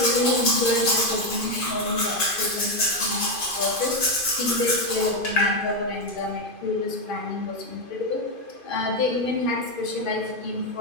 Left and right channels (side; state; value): right; late; 2.5 ms